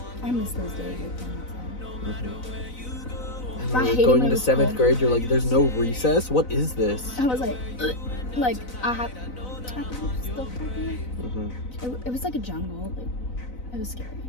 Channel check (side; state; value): right; late; 4.0 ms